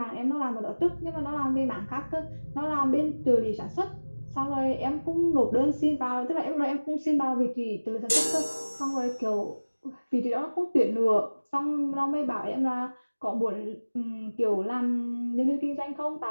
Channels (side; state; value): both; inverted; correlation -1.00